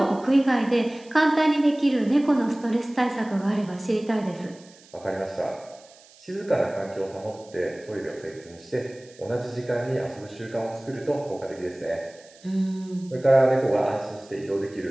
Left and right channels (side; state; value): right; noise; hiss, 25 dB below the sound